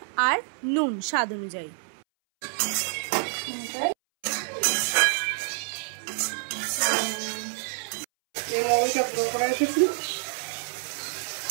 আর নুন স্বাদ অনুযায়ী।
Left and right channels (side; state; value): left; silent; 60 dB below the other